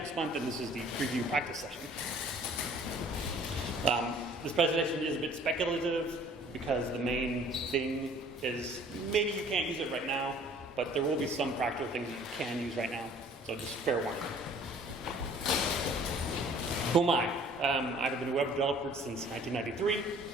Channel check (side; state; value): both; normal; correlation 0.54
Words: month, and this is the preview practice session. This presentation is a bit speculative because the main thing is maybe you can't use it right now, but there will be some practical things that you can use right now, so just fair warning. Who am I? I've been a web developer since 1993.